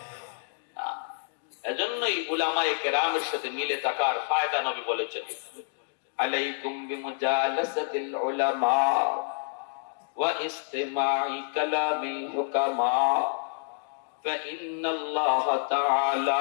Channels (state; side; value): silent; right; digital silence